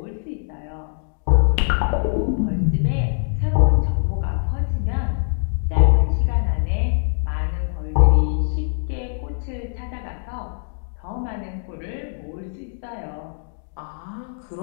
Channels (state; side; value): silent; right; digital silence